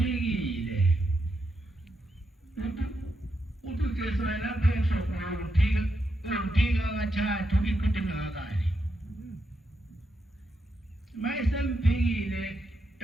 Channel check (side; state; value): both; normal; correlation 0.83